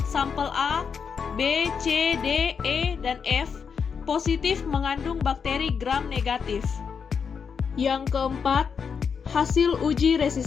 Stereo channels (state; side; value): quieter; right; 6.3 dB